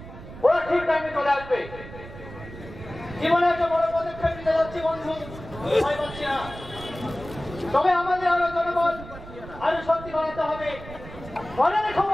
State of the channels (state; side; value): noise; right; rumble, 14 dB below the sound